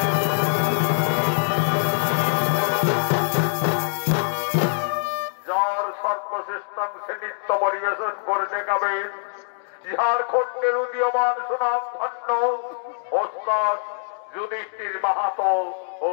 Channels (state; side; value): silent; right; digital silence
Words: যার সর্বশ্রেষ্ঠাংশে নৃত্য পরিবেশন করে দেখাবেন ঝাড়খণ্ডের উদীয়মান সুনাম ধন্য ওস্তাদ যুধিষ্ঠির মাহাতো ও